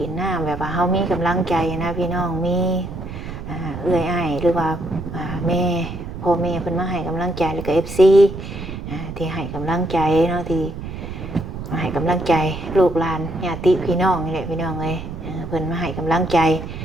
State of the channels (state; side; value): noise; right; rumble, 9 dB below the sound